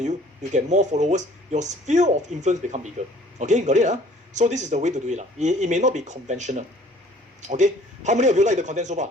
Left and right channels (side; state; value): both; normal; correlation 0.54